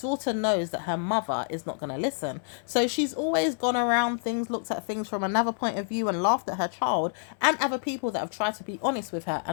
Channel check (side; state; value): right; silent; 59 dB below the other